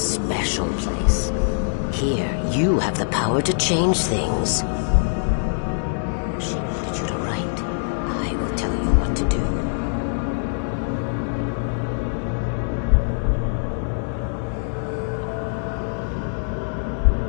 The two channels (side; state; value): right; silent; digital silence